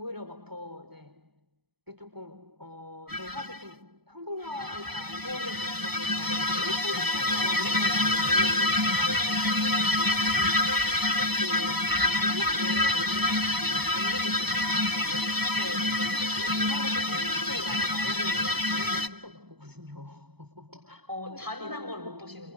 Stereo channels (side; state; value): left; late; 0.98 ms